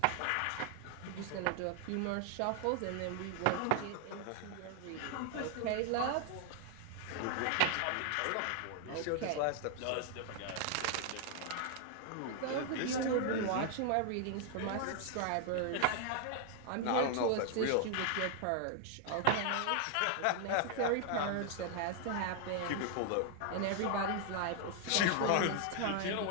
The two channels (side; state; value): both; different; correlation 0.00